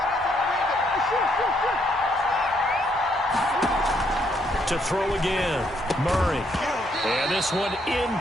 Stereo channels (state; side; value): normal; both; correlation 0.72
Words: To throw again, Murray. And this one